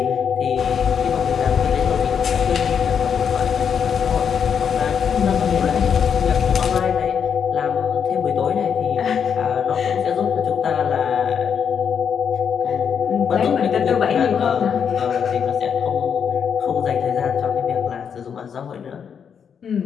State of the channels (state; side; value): quieter; right; 7.3 dB